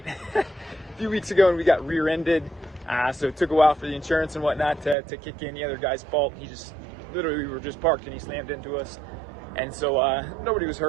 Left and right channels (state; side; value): drops out; left; at 5.0 s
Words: a few weeks ago and we got rear-ended. So it took a while for the insurance and whatnot to kick in. The other guy's fault. He just, literally, we were just parked and he slammed into us. And so nobody was